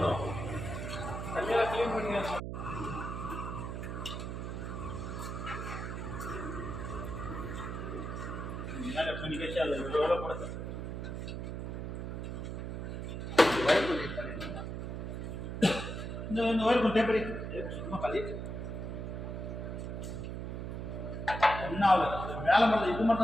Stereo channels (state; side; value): noise; right; hum, 5 dB below the sound